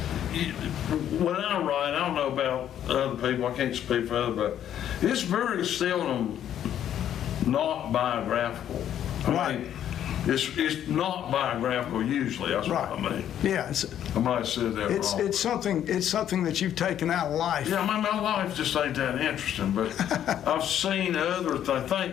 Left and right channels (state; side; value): quieter; right; 10.4 dB